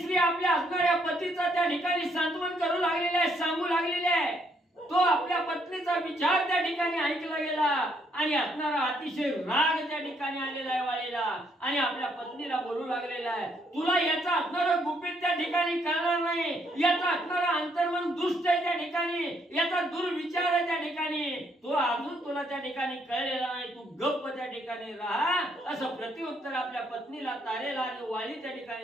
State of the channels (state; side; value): normal; both; correlation 0.71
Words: आपल्या असणाऱ्या पतीचा त्या ठिकाणी सांत्वन करू लागलेली आहे, सांगू लागलेली आहे. तो आपल्या पत्नीचा विचार त्या ठिकाणी ऐकला गेला आणि असणारा अतिशय राग त्या ठिकाणी आलेला आहे वाळीला आणि आपल्या पत्नीला बोलू लागलेला आहे तुला याचा असणारं गुपित त्या ठिकाणी कळणार नाही. याचा असणारा अंतर्मन दुष्ट आहे त्या ठिकाणी, याचा दुर्विचार आहे त्या ठिकाणी. तो अजून तुला त्या ठिकाणी कळलेला नाही. तू गप्प त्या ठिकाणी राहा असं प्रत्युत्तर आपल्या पत्नीला तारेला आणि वाळी त्या